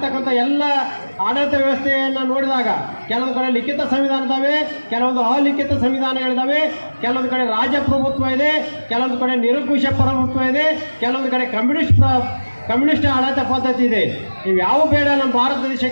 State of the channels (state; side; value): inverted; both; correlation -1.00